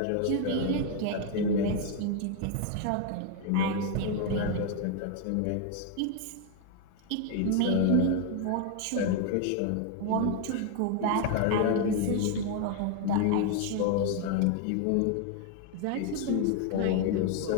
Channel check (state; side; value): different; both; correlation 0.01